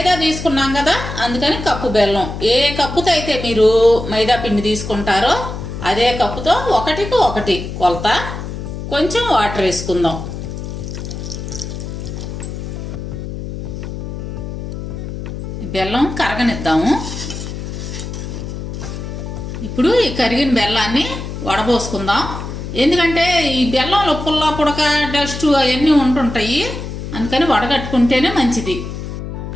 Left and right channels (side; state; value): left; noise; hum, 7 dB below the sound